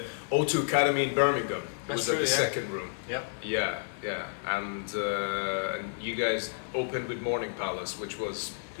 O2 Academy in Birmingham. It was at the second room. Yep. Yeah, and you guys opened with Morning Palace, which was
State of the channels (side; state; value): right; silent; digital silence